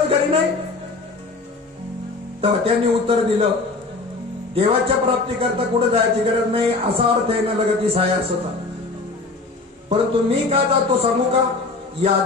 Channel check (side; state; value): right; quieter; 3.6 dB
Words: घरी नाही. तेव्हा त्यांनी उत्तर दिलं, देवाच्या प्राप्तीकरता कुठे जायची गरज नाही असा अर्थ आहे न लगती साया असता. परंतु मी का जातो सांगू का?